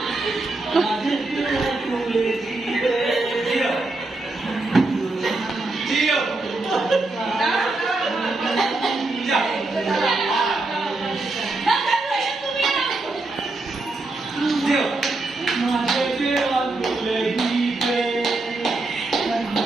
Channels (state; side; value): quieter; left; 3.1 dB